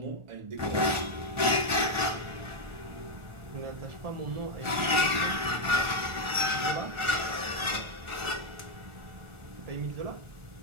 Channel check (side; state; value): left; late; 1.4 ms